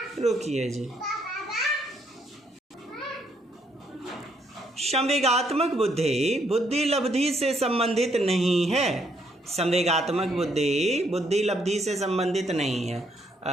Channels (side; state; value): both; normal; correlation 0.71